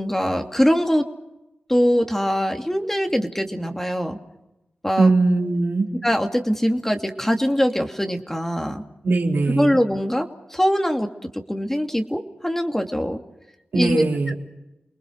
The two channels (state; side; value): normal; both; correlation 0.97